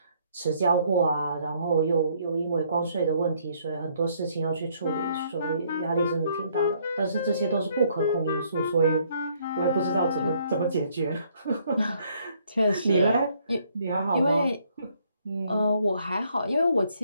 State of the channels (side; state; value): both; inverted; correlation -0.67